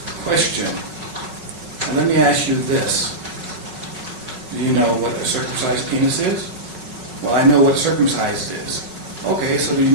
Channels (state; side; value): late; left; 5.4 ms